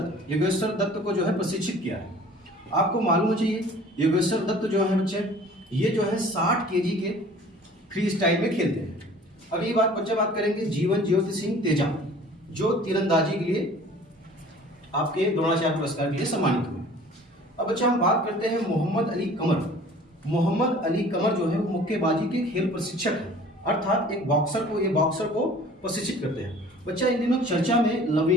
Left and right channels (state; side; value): normal; both; correlation 0.48